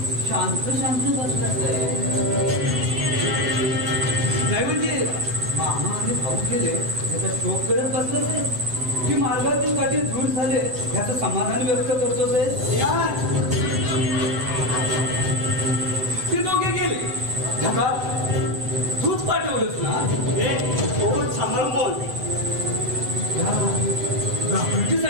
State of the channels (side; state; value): left; late; 8.1 ms